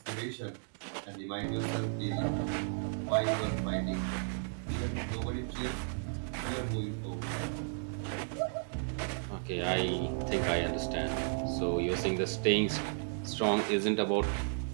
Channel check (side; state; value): left; silent; digital silence